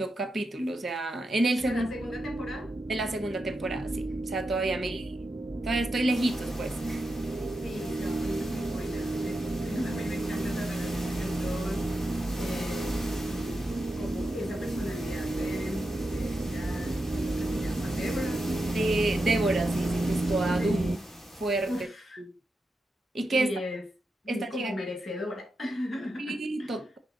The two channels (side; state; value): both; normal; correlation 0.88